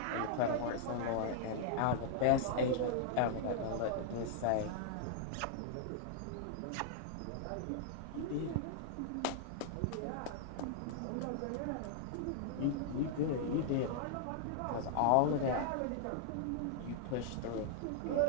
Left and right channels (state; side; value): different; both; correlation -0.01